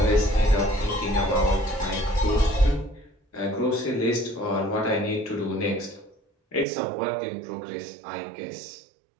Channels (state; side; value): drops out; left; at 6.7 s